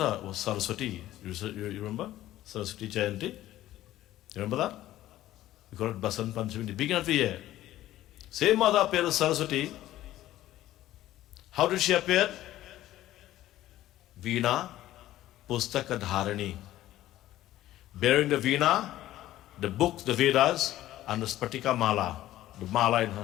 was Saraswati. You remember? Saraswati Jayanti? You remember that? We call it Basant Panchami, the beginning of the year. Same mother appeared as Saraswati. How did she appear? Veena Pustaka Dharani. Bearing the Veena, the books, the Vedas, and the Spatika Mala, the Mala in her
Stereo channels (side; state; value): right; quieter; 14.4 dB